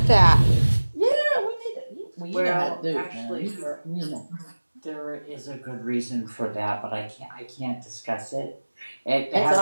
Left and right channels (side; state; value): both; inverted; correlation -1.00